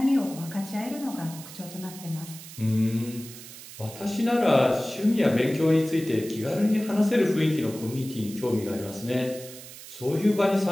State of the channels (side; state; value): right; noise; hiss, 15 dB below the sound